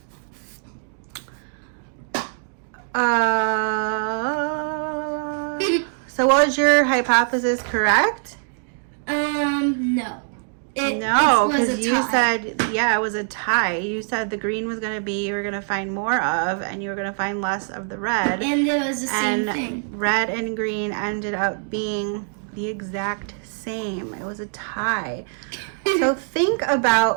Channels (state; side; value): silent; left; 62 dB below the other